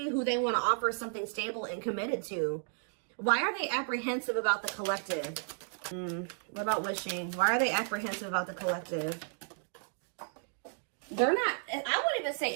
who they want to offer something stable and committed to. Why are they apprehensive about the collective? What about wishing? Why are they apprehensive about the collective? They're not, I wouldn't even say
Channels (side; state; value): left; silent; digital silence